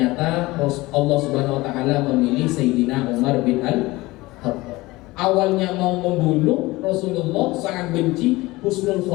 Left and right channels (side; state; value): right; quieter; 20.4 dB